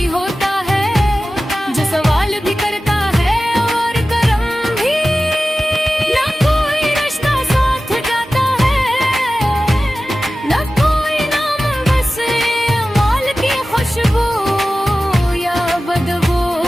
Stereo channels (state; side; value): normal; both; correlation 0.95